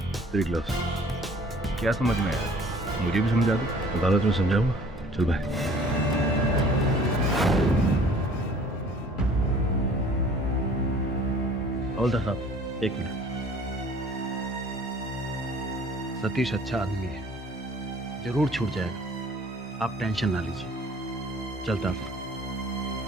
तेरी ग्लास। क्या समझ में आया? मुझे भी समझा दो। अदालत में समझाऊंगा। चल भाई। हवलदार साहब, एक मिनट। सतीश अच्छा आदमी है, जरूर छूट जाएगा, आप टेंशन ना लीजिए। चलता हूं।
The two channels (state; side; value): normal; both; correlation 0.52